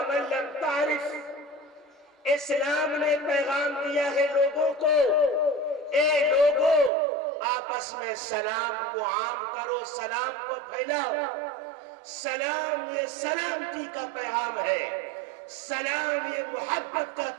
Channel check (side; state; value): left; drops out; at 6.9 s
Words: لم تعرف. اسلام نے پیغام دیا ہے لوگوں کو، اے لوگوں آپس میں سلام کو عام کرو، سلام کو پھیلاؤ. سلام یہ سلامتی کا پیغام ہے، سلام یہ محبت کا